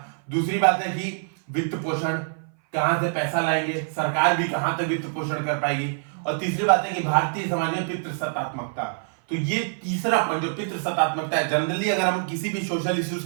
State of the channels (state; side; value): silent; left; 57 dB below the other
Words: दूसरी बात है कि वित्त पोषण, कहां से पैसा लाएंगे, सरकार भी कहां तक वित्त पोषण कर पाएगी। और तीसरी बात है कि भारतीय समाज में पितृसत्तात्मकता। तो ये तीसरा पॉइंट जो पितृसत्तात्मकता है, जनरली अगर हम किसी भी सोशल इश्यूज